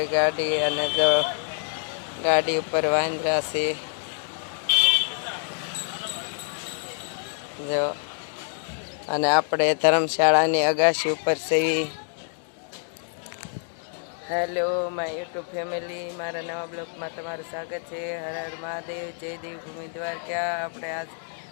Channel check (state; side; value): silent; right; 61 dB below the other